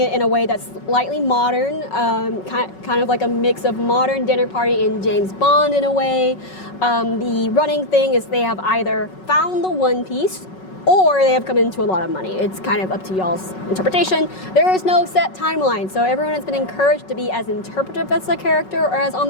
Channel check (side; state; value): right; late; 5.4 ms